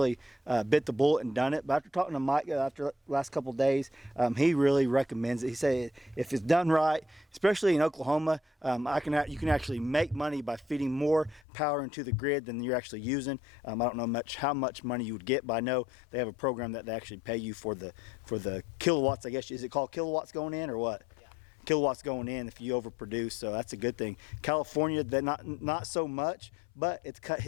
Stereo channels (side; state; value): right; drops out; at 11.4 s